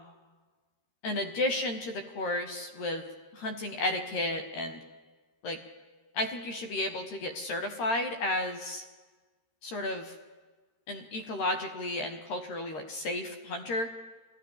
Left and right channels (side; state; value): right; late; 13 ms